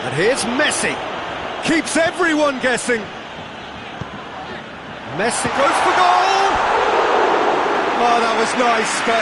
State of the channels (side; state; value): both; identical; correlation 1.00